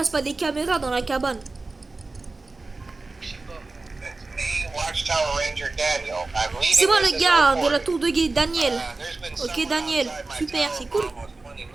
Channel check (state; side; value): quieter; left; 3.5 dB